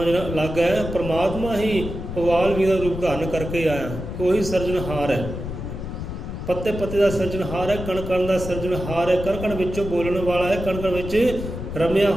ਜਿਹੜਾ ਅਲੱਗ ਹੈ। ਪਰਮਾਤਮਾ ਹੀ ਵਾਲਮੀਕ ਦਾ ਰੂਪ ਧਾਰਨ ਕਰਕੇ ਆਇਆ, ਕੋਈ ਸਿਰਜਣਹਾਰ ਹੈ, ਪੱਤੇ ਪੱਤੇ ਦਾ ਸਿਰਜਣਹਾਰ ਹੈ, ਕਣ ਕਣ ਦਾ ਸਿਰਜਣਹਾਰ ਹੈ, ਕਣ ਕਣ ਵਿੱਚੋਂ ਬੋਲਣ ਵਾਲਾ ਹੈ, ਕਣ ਕਣ ਵਿੱਚ ਰਮਿਆ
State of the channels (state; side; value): noise; left; rumble, 7 dB below the sound